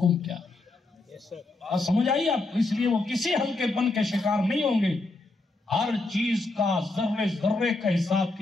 کیا ہے۔ بات سمجھ آئی آپ کو؟ اس لیے وہ کسی ہلکے پن کے شکار نہیں ہوں گے، ہر چیز کا ذرے ذرے کا حساب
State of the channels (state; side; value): quieter; right; 3.1 dB